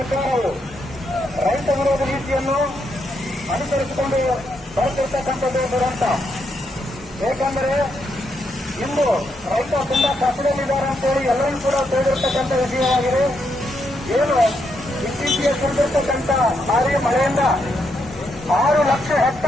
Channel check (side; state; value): both; normal; correlation 0.79